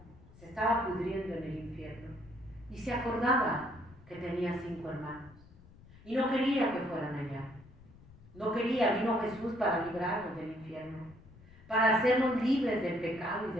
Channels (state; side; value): noise; left; rumble, 22 dB below the sound